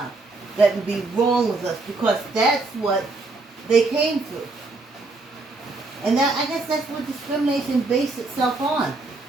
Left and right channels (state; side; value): quieter; left; 3.4 dB